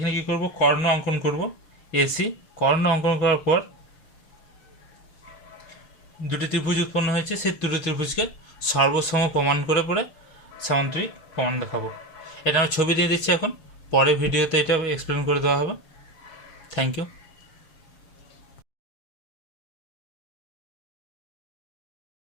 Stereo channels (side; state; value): right; late; 6.6 ms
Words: কি করব, কর্ণ অঙ্কন করব। AC কর্ণ অঙ্কন করার পর দুটি ত্রিভুজ উৎপন্ন হয়েছে, সেই দুটি ত্রিভুজকে সর্বসম প্রমাণ করে পরে সামান্তরিক প্রমাণ দেখাবো। এটা আমি ছবি দিয়ে দিচ্ছি এখন, পরে ভিডিওতে এটা এক্সপ্লেন করে দেওয়া হবে। Thank you.